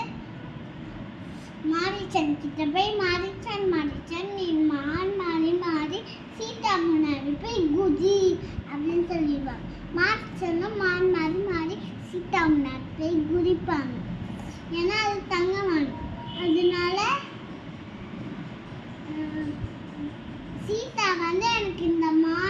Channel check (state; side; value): identical; both; correlation 1.00